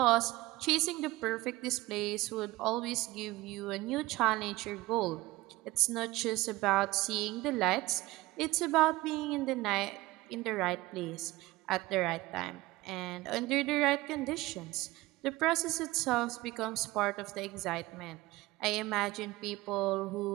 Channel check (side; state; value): left; quieter; 19.5 dB